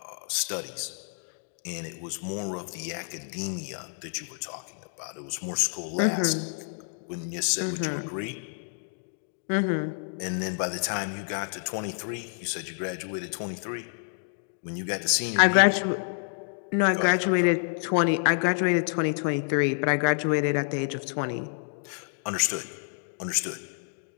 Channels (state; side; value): silent; right; digital silence